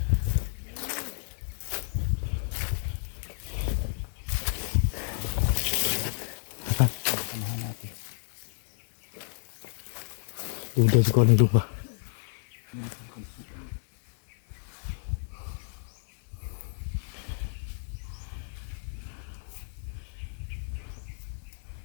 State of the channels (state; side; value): silent; right; digital silence